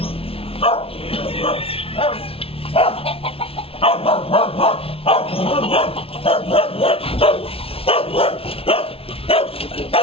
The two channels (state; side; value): late; right; 0.27 ms